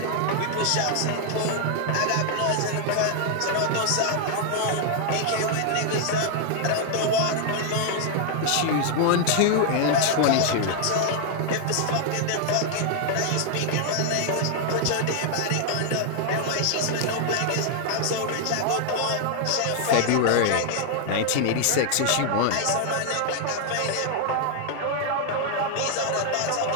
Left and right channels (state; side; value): different; both; correlation 0.00